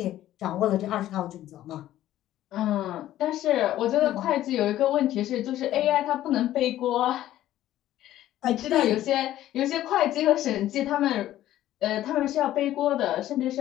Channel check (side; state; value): right; quieter; 13.4 dB